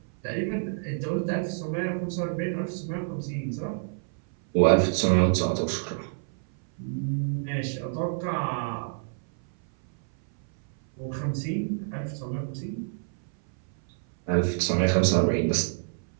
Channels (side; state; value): left; silent; 58 dB below the other